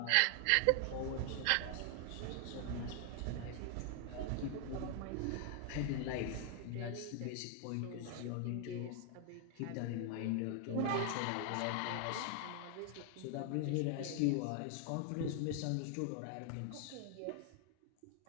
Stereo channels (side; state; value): both; different; correlation 0.00